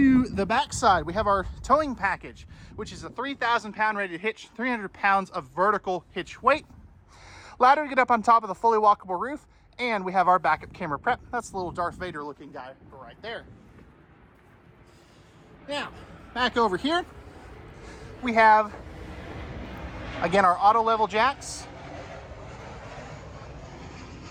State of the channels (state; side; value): identical; both; correlation 1.00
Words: the back side, we have our towing package, which is a 3,000 pound rated hitch, 300 pounds of vertical hitch weight. Ladder to get up on top of the fully walkable roof, and we have our backup camera prep. That's the little Darth Vader looking guy right there. Now, back over here, we have, again, our auto level jacks,